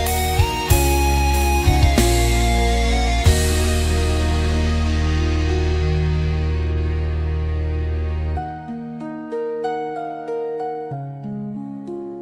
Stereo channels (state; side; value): identical; both; correlation 1.00